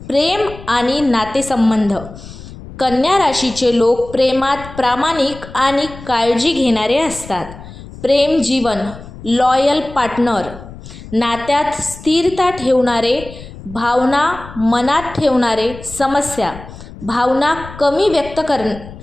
प्रेम आणि नातेसंबंध. कन्या राशीचे लोक प्रेमात प्रामाणिक आणि काळजी घेणारे असतात. प्रेम जीवन: लॉयल पार्टनर, नात्यात स्थिरता ठेवणारे, भावना मनात ठेवणारे. समस्या: भावना कमी व्यक्त करणे,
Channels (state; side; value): noise; left; rumble, 15 dB below the sound